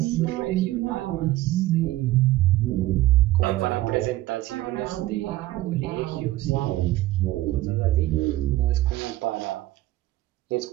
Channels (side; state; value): left; quieter; 16.5 dB